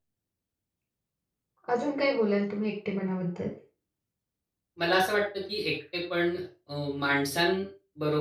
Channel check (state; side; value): identical; both; correlation 1.00